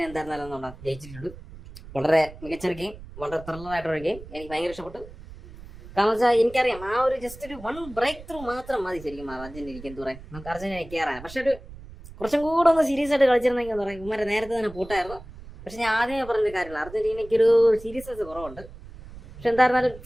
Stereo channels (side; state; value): right; noise; rumble, 17 dB below the sound